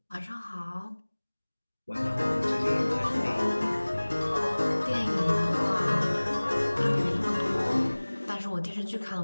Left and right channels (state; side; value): inverted; both; correlation -1.00